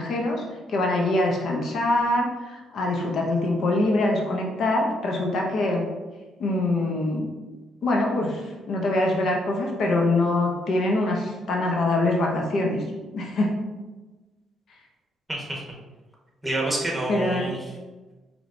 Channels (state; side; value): normal; both; correlation 0.74